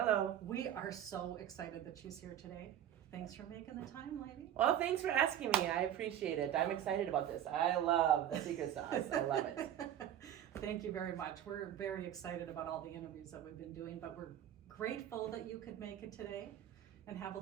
We are so excited that she's here today. Thanks for making the time, lady. Well, thanks for asking me. I appreciate it. I'm excited about this. I love the secret sauce. I love it. Thank you very much. We're very excited about all the interviews that we've been doing, but we're grateful that you could make it today and have a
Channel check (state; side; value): quieter; left; 10.8 dB